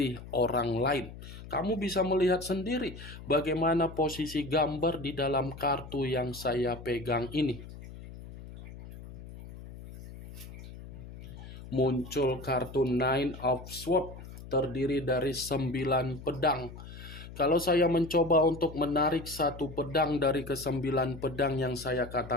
orang lain. Kamu bisa melihat sendiri bagaimana posisi gambar di dalam kartu yang saya pegang ini. Muncul kartu Nine of Swords, terdiri dari 9 pedang. Kalau saya mencoba untuk menarik satu pedang dari ke-9 pedang yang saya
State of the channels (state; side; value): noise; left; hum, 14 dB below the sound